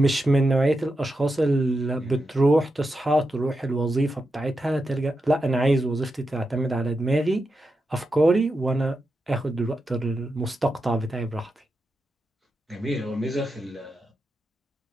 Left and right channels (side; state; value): both; normal; correlation 0.87